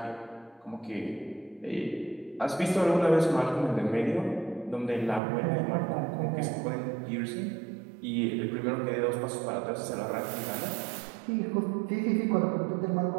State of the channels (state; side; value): drops out; left; at 5.2 s